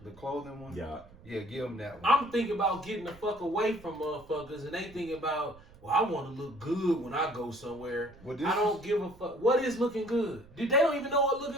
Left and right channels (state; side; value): noise; right; rumble, 23 dB below the sound